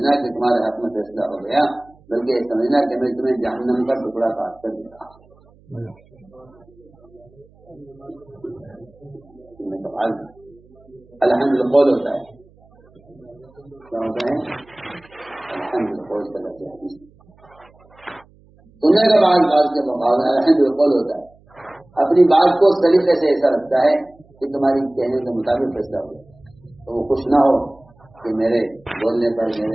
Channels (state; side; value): noise; right; hum, 29 dB below the sound